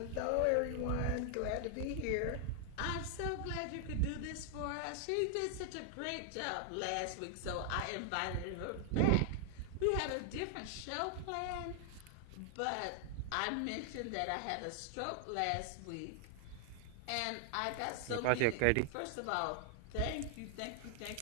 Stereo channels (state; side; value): different; both; correlation 0.00